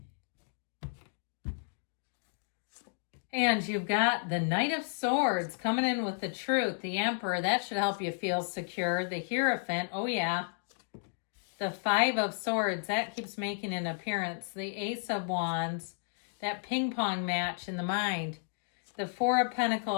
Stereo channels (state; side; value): silent; right; digital silence